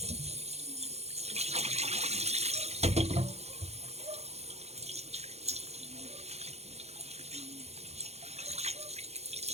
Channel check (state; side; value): late; left; 0.31 ms